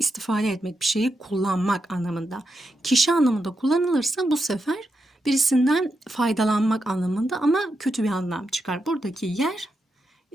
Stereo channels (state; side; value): normal; both; correlation 0.85